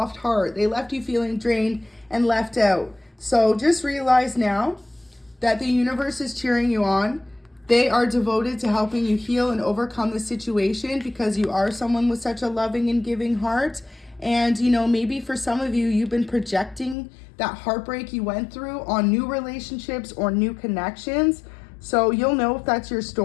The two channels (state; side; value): drops out; right; at 16.9 s